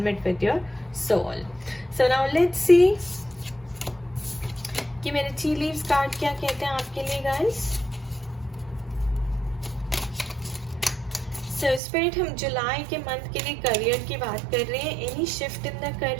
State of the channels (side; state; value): left; drops out; at 11.8 s